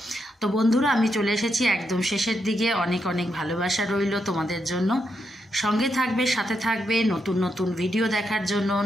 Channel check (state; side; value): normal; both; correlation 0.82